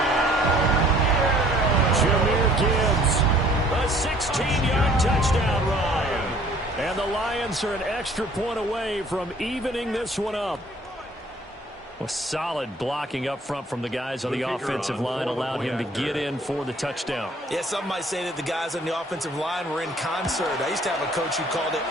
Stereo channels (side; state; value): both; normal; correlation 0.56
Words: Jahmyr Gibbs, a 16-yard touchdown run. And the Lions are an extra point away from evening this one up. Well, solid blocking up front from the guys on the offensive line allowed him to get in for the touchdown. Yeah, some might say that the guys on the offensive line were in concert. I used to have a coach who called it